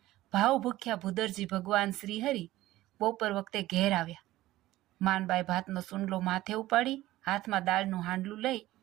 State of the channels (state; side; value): quieter; left; 16.2 dB